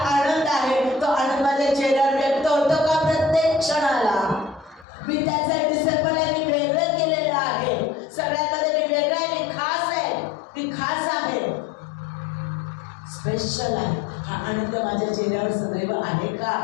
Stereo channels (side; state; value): right; drops out; at 4.9 s